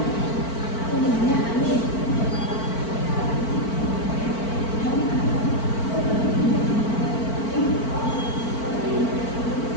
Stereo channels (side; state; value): right; late; 4.5 ms